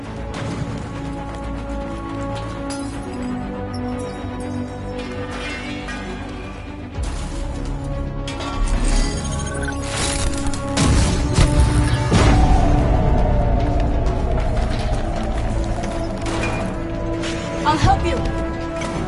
I'll help you.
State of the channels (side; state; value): both; identical; correlation 1.00